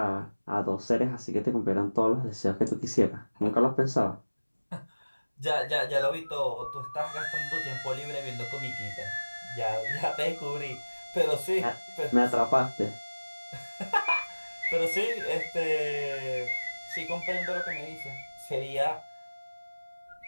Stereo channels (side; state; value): both; inverted; correlation -1.00